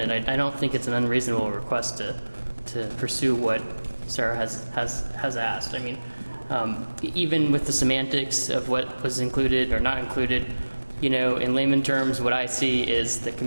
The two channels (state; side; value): inverted; both; correlation -1.00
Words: I don't think it's an unreasonable request to pursue what Sarah has asked. I mean, even with the semantics of what was included or not included, you know, in layman terms, what I see is the